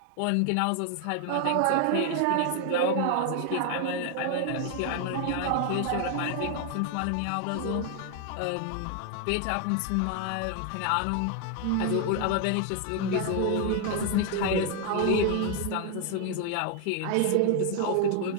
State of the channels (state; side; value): different; both; correlation 0.01